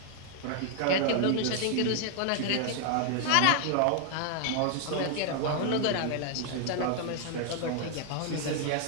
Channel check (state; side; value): different; both; correlation 0.00